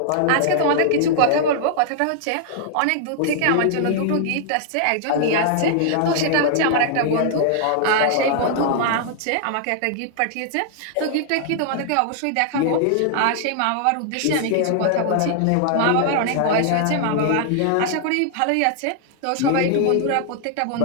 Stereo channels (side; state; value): both; different; correlation -0.01